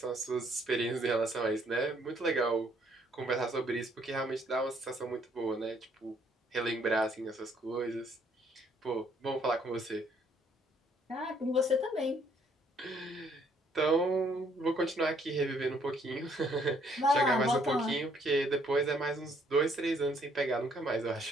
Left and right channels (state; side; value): normal; both; correlation 0.66